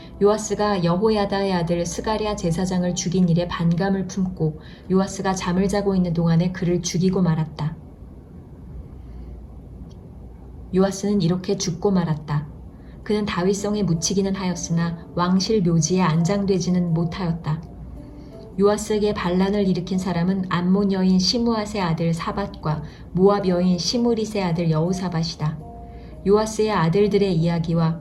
요아스가 여호야다의 아들 스가랴 제사장을 죽인 일에 반감을 품고 요아스가 잠을 자고 있는 동안에 그를 죽이고 말았다. 요아스는 이렇게 죽고 말았다. 그는 다윗성에 묻히기는 하였으나 왕실 묘지에 안장되지는 못하였다. 요아스에게 반란을 일으킨 사람은 암몬 여인 시므앗의 아들 사밧과 모압 여인 시므릿의 아들 여호사밧이다. 요아스의 아들들의 이야기와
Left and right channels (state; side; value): identical; both; correlation 1.00